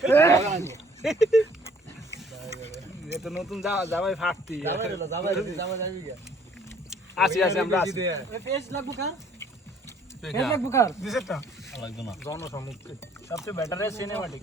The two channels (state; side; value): normal; both; correlation 0.59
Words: এটা নতুন জামাই ফাটতি জামাই যাবি গা আসি আমরা আসি ফেস লাগবো কার ফেস লাগবো কার দিছেটা লাগবে না জনসম্মুখে সবচেয়ে বেটার সিনেমাটিক